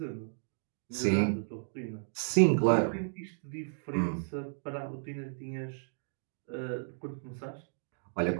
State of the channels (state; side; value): silent; left; digital silence